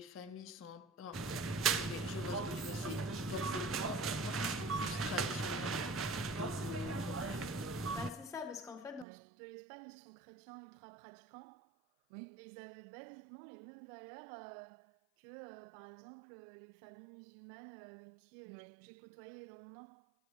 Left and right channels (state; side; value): drops out; left; at 9.1 s